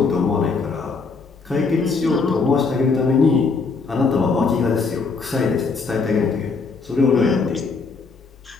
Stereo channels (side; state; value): right; quieter; 4.5 dB